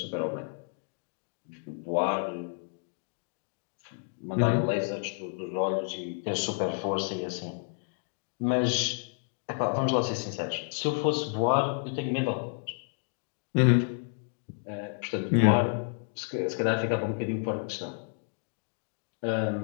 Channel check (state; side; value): silent; right; 57 dB below the other